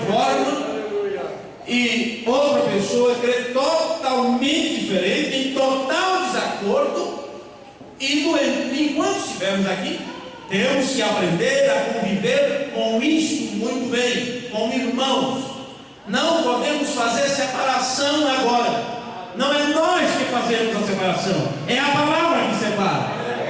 forma e outra pessoa crê totalmente diferente, em total desacordo. E enquanto estivermos aqui, temos que aprender a conviver com isto muito bem, como irmãos. Não podemos fazer separação agora. Não é nós que fazemos a separação, é a palavra que separa.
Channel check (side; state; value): both; identical; correlation 1.00